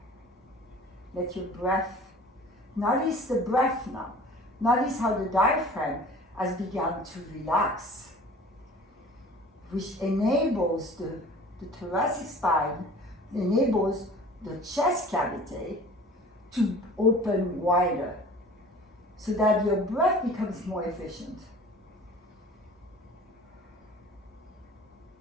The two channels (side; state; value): both; normal; correlation 0.45